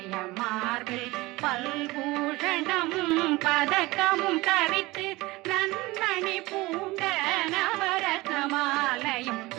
மார்பில் பல்பூஷணமும் பதக்கமும் தரித்து நன்மணி பூண்ட நவரத்ன மாலையும்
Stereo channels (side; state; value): left; quieter; 20.9 dB